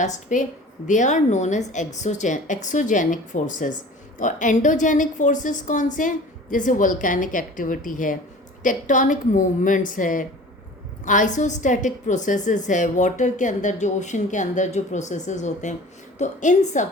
पे they are known as exogenic forces. और एंडोजेनिक फोर्सेस कौन से हैं? जैसे वोल्केनिक एक्टिविटी है, टेक्टोनिक मूवमेंट्स है, आइसोस्टैटिक प्रोसेसेस है, वाटर के अंदर जो ओशन के अंदर जो प्रोसेसेस होते हैं। तो इन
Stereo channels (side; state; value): both; normal; correlation 0.42